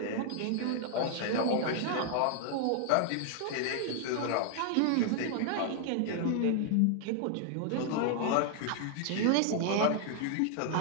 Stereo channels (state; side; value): different; both; correlation 0.00